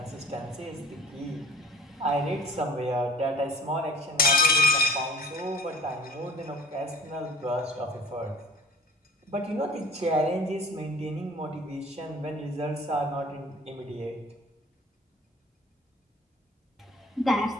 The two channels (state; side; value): normal; both; correlation 0.47